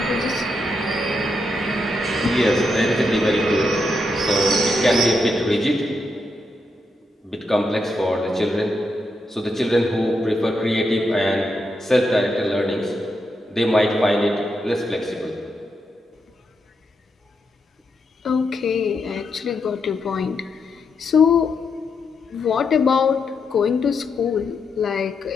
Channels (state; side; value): normal; both; correlation 0.82